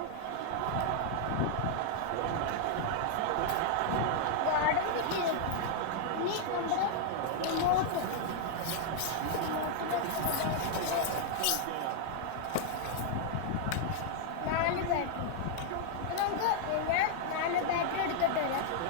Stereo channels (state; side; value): different; both; correlation 0.00